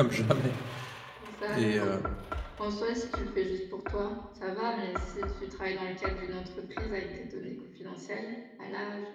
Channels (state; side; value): identical; both; correlation 1.00